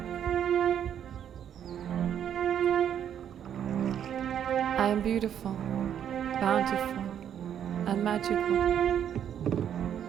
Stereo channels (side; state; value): left; quieter; 9.4 dB